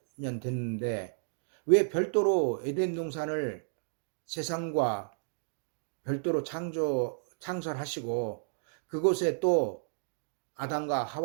됐는데 왜 별도로 에덴 동산을 세상과 별도로 창설하시고 그곳에 또 아담과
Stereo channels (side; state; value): left; silent; digital silence